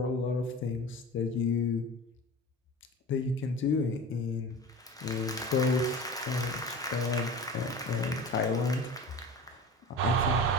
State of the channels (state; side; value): normal; both; correlation 0.34